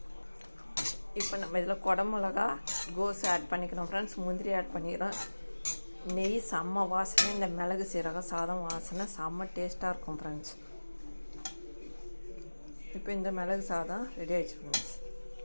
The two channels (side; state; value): both; inverted; correlation -1.00